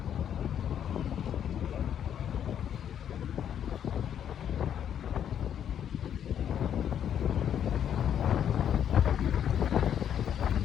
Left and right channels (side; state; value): right; quieter; 9.3 dB